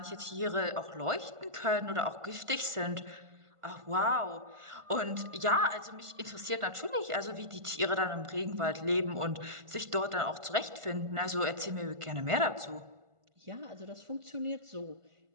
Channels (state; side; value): late; left; 1.5 ms